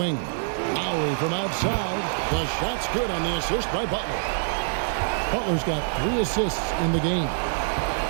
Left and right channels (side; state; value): left; silent; digital silence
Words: Lowry from outside. The shot's good on the assist by Butler. Butler's got 3 assists in the game.